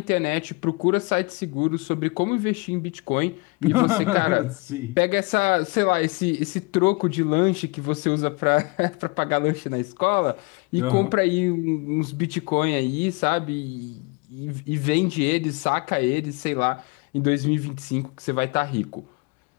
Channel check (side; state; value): right; quieter; 27.5 dB